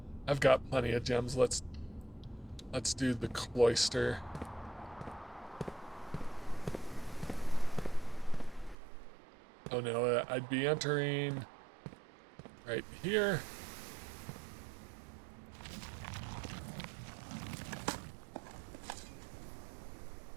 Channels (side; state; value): left; drops out; at 8.8 s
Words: I've got plenty of gems. Let's do the cloister. Oh no, I'd be entering right here.